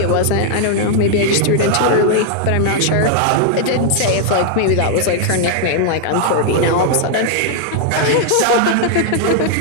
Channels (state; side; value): different; both; correlation 0.00